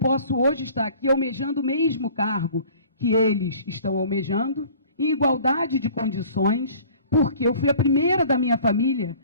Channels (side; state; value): both; inverted; correlation -0.49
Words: hoje estar aqui almejando o mesmo cargo que eles estão almejando, em igualdade de condições, porque eu fui a primeira da minha família